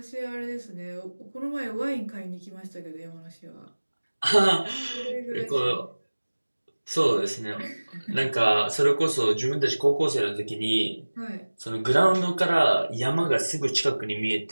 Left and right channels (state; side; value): inverted; both; correlation -1.00